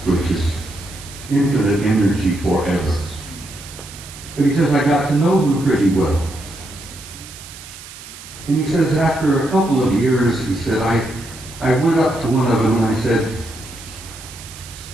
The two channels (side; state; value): right; noise; hiss, 16 dB below the sound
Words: which is infinite energy forever. But he says, I got to know them pretty well. And he says, after a couple of years, he said, I went up to one of them and I said,